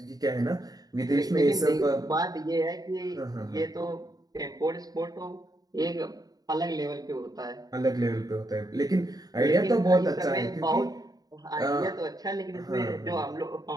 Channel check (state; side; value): late; left; 0.18 ms